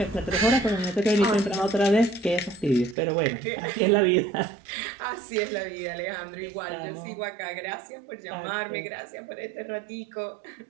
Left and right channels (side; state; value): left; drops out; at 3.0 s